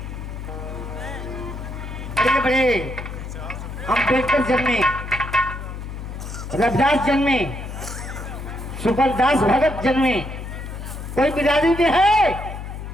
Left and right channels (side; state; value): left; noise; hum, 8 dB below the sound